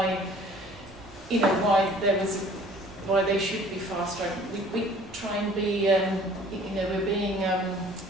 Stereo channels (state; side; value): normal; both; correlation 0.52